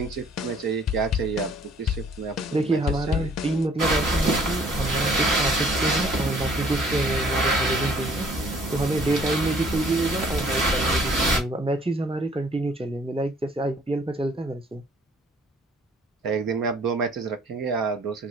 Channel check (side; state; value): both; normal; correlation 0.58